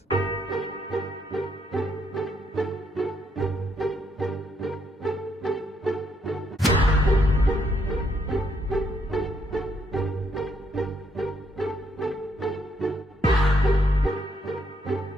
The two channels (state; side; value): normal; both; correlation 0.74